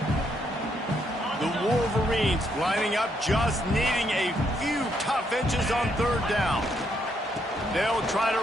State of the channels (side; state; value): both; normal; correlation 0.75